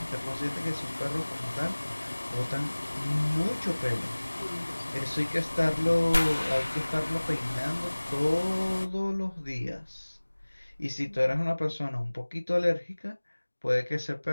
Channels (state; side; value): inverted; both; correlation -1.00